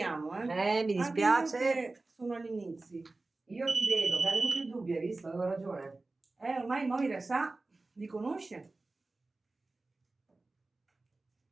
eh. Mi Anche dispiace. io che sono agli inizi. Io ti vedo, mi hai venuto il dubbio, hai visto? Avevo ragione. Ormai Moira sa, li conosce.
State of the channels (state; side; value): quieter; left; 3.3 dB